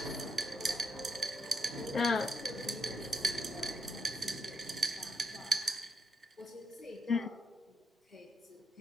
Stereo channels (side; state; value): both; normal; correlation 0.80